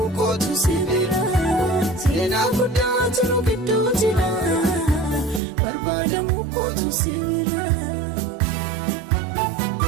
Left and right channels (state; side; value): drops out; left; at 5.4 s